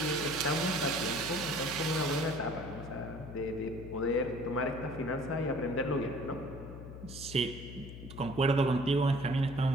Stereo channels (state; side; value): noise; left; hum, 12 dB below the sound